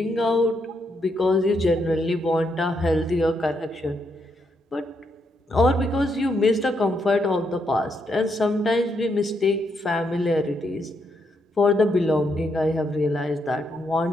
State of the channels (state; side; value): normal; both; correlation 0.78